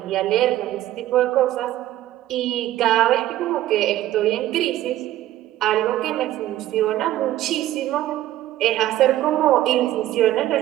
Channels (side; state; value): left; quieter; 14.1 dB